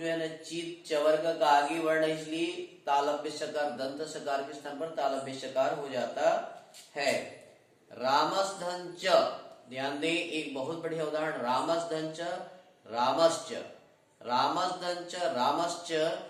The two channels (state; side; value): identical; both; correlation 1.00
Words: है ना चित चवर्ग का आगे वर्ण, इसलिए तालव्य सकार दंत सकार के स्थान पर तालव्य सकार हो जाता है। रामस धन च, ध्यान दें एक बहुत बढ़िया उदाहरण, रामस धन च रामश्च, रामस धन च रामश्च,